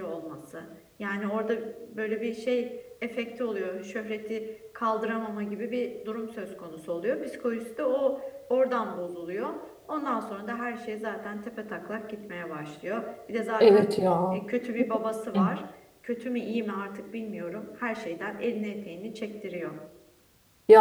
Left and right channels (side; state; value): both; identical; correlation 1.00